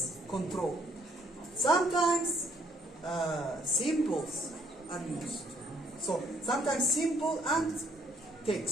control. Sometimes symbols are used. So sometimes symbol and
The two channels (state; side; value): normal; both; correlation 0.66